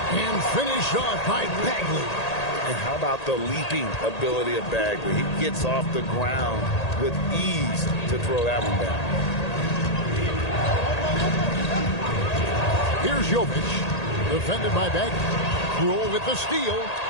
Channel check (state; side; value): late; right; 1.8 ms